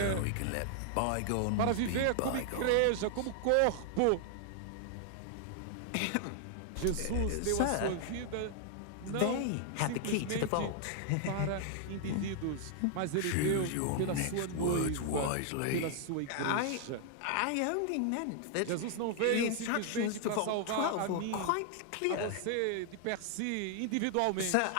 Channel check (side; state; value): both; different; correlation 0.00